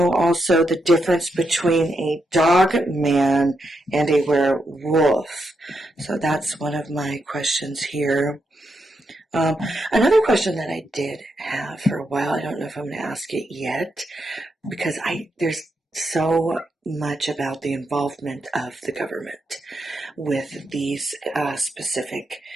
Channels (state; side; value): normal; both; correlation 0.83